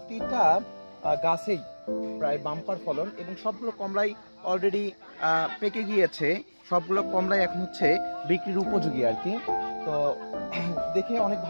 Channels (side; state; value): both; inverted; correlation -1.00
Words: গাছেই প্রায় বাম্পার ফলন, এবং সবগুলো কমলাই অলরেডি পেকে গিয়েছে। সবগুলো কমলাই এখন হচ্ছে বিক্রির উপযোগী আর কি। তো দেখে অনেক